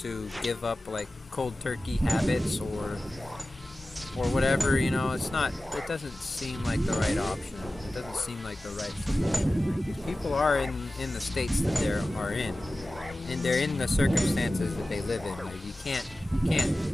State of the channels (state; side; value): normal; both; correlation 0.96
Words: give up like cold turkey habits or whatever, it doesn't seem like the right option. It doesn't seem like the right solution. People are in the states that they are in, and they're in the circumstances that they live in. Like you